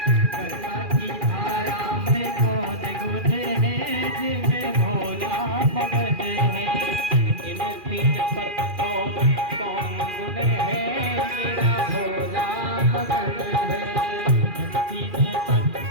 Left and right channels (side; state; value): left; late; 2.4 ms